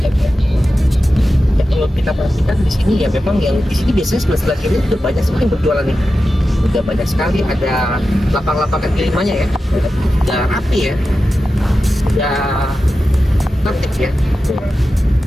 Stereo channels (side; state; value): both; normal; correlation 0.92